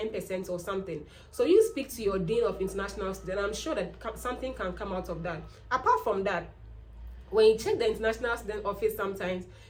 or something. So you speak to your dean of international students, and I'm sure that something can come out of that. Apart from that, when you check the international student office, sometimes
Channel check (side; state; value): both; identical; correlation 1.00